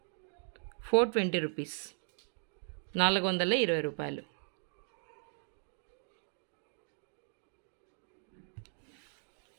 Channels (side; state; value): left; silent; 53 dB below the other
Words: 420 రూపీస్, 420 రూపాయలు.